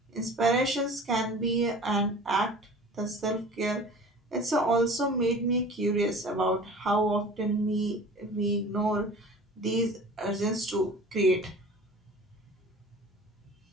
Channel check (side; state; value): both; normal; correlation 0.42